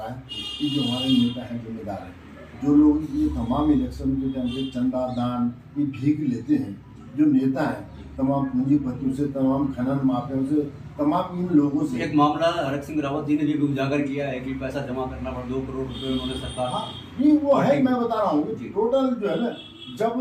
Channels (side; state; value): both; identical; correlation 1.00